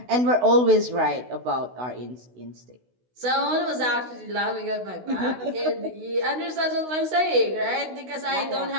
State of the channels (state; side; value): late; left; 16 ms